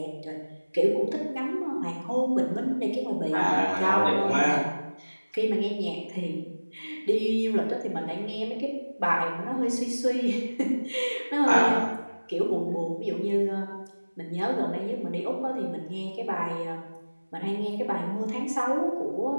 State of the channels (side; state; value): both; inverted; correlation -1.00